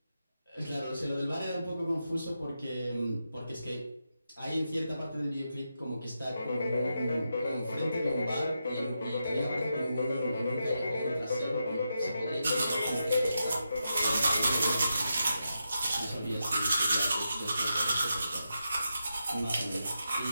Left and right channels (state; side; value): inverted; both; correlation -0.86